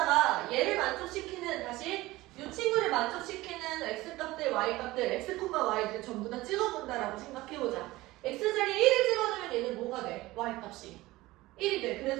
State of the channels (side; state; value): left; quieter; 18.8 dB